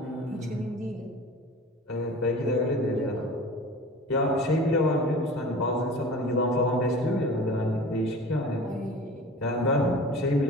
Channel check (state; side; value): normal; both; correlation 0.39